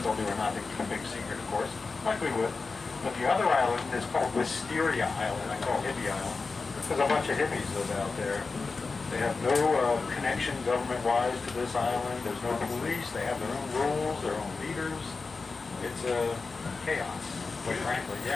do or not. They keep a big secret, of course. Likely would. But the other island is called Wisteria Island. I call it Hippie Island. There's a bunch of hippies live out there. They have no connection government-wise to this island. There's no police. They have their own rules, their own leaders. It's chaos, quite frankly.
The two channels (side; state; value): right; quieter; 4.2 dB